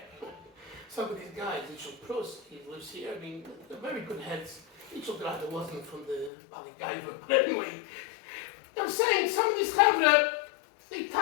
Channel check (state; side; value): drops out; right; at 6.3 s